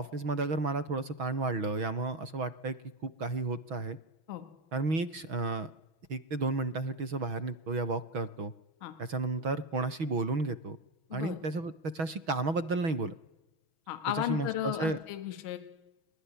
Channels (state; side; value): late; left; 6.2 ms